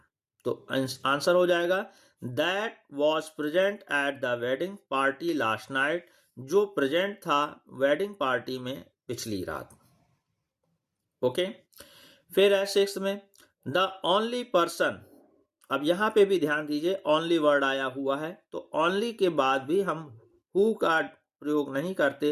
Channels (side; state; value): both; identical; correlation 1.00